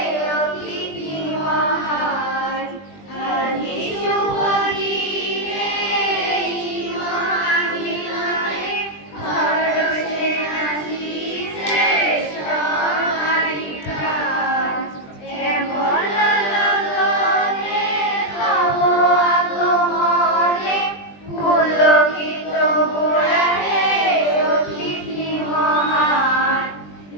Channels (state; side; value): late; right; 20 ms